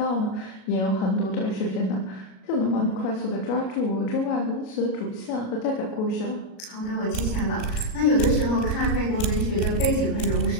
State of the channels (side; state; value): right; late; 37 ms